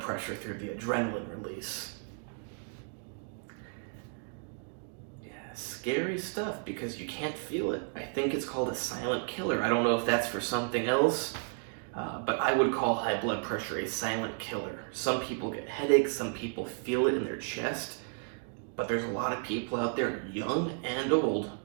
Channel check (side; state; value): left; silent; 56 dB below the other